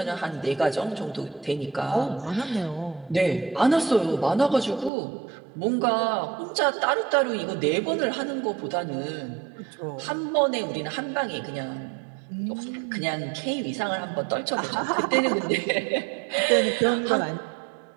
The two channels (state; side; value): drops out; left; at 4.9 s